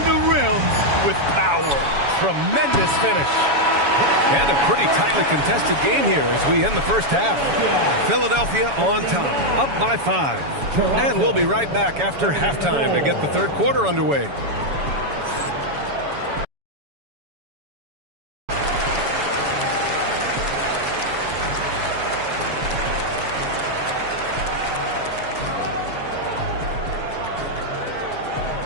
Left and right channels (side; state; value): left; late; 7.1 ms